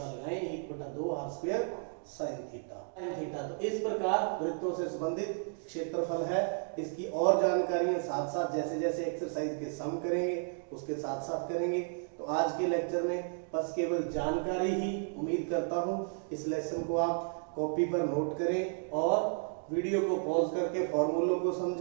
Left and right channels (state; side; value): silent; left; 56 dB below the other